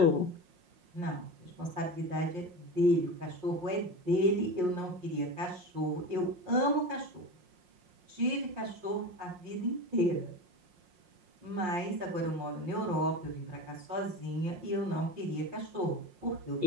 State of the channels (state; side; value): late; left; 5.6 ms